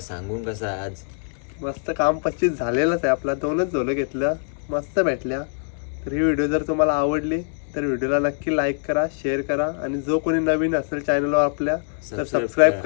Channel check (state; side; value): silent; right; digital silence